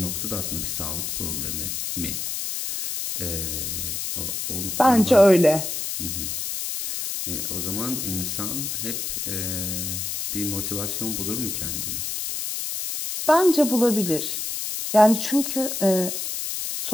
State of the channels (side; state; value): left; noise; hiss, 3 dB below the sound